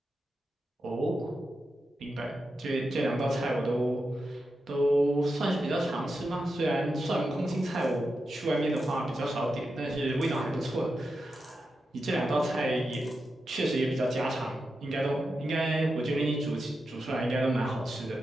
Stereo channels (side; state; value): both; normal; correlation 0.89